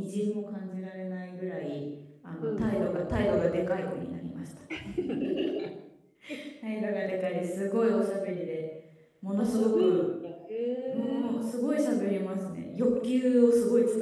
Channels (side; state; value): both; identical; correlation 1.00